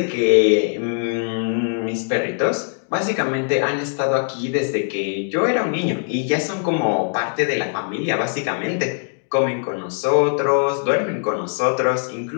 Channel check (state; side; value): silent; right; 65 dB below the other